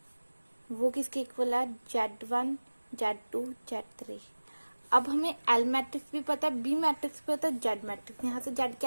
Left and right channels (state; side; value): inverted; both; correlation -1.00